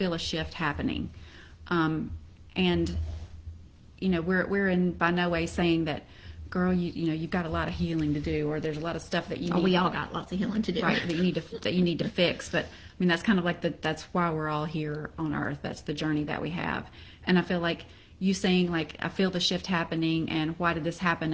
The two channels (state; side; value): identical; both; correlation 1.00